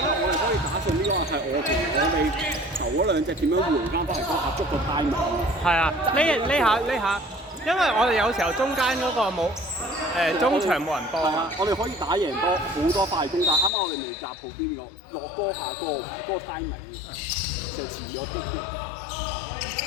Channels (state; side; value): drops out; right; at 13.7 s